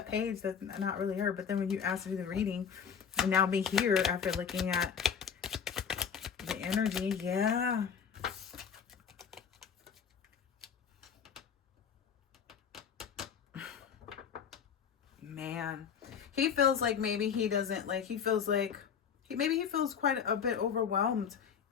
page. That's not really her. But then when you asked to do the reading, and now be here after looking at the energy, yeah. Man, he feels like maybe he doesn't like, he feels like maybe he feels quite a bit overwhelmed.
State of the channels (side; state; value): right; quieter; 7.2 dB